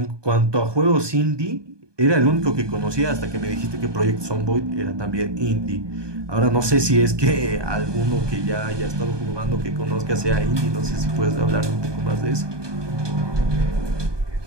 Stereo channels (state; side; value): late; left; 1.2 ms